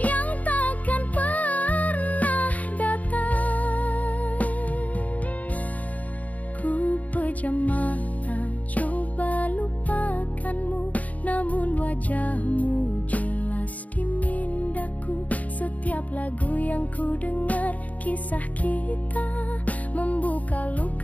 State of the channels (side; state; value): right; late; 0.072 ms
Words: takkan pernah datang. Ku pejam mata coba lupakanmu, namun wajahmu jelas di mindaku. Setiap lagu yang ku dengar kisah kita, membuka